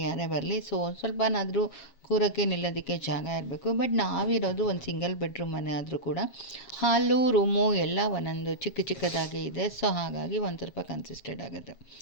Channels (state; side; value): late; right; 7.4 ms